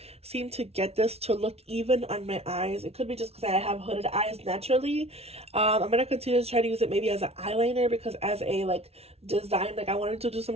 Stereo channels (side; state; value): left; late; 0.30 ms